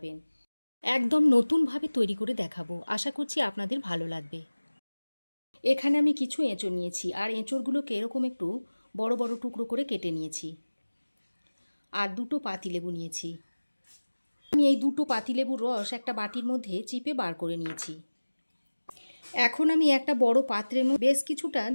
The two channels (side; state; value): both; inverted; correlation -1.00